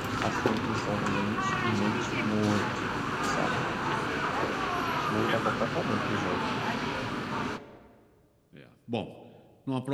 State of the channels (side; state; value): both; identical; correlation 1.00